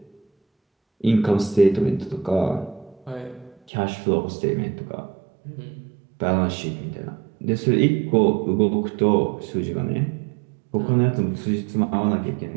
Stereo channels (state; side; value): drops out; left; at 3.6 s